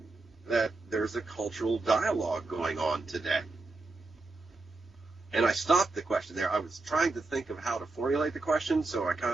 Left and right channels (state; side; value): quieter; left; 3.3 dB